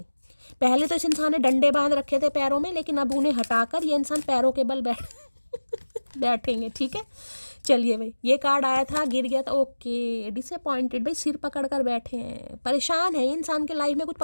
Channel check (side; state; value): both; inverted; correlation -1.00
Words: पहले तो इस इंसान ने डंडे बांध रखे थे पैरों में, लेकिन अब उन्हें हटाकर ये इंसान पैरों के बल बैठेंगे। ठीक है, चलिए भाई, ये कार्ड आया था, गिर गया था, ओके। डिसअपॉइंटेड भाई, सिर पकड़ कर बैठे हैं, परेशान है इंसान के लाइफ में, कुछ